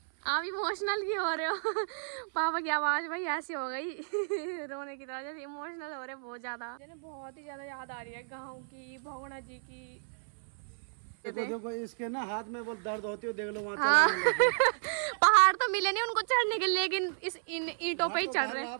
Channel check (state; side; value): silent; left; 56 dB below the other